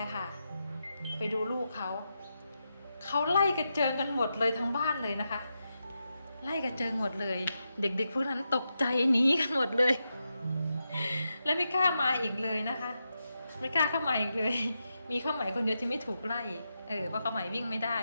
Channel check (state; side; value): inverted; both; correlation -0.87